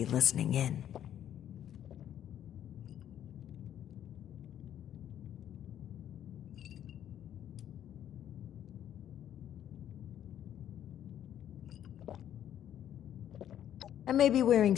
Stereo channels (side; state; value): right; quieter; 10.5 dB